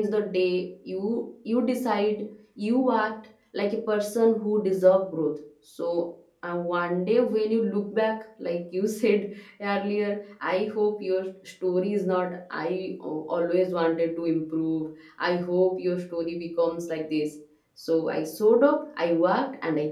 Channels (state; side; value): identical; both; correlation 1.00